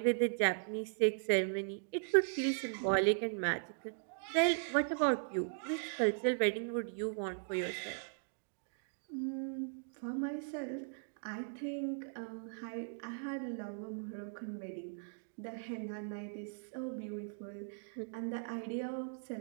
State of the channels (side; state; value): left; silent; digital silence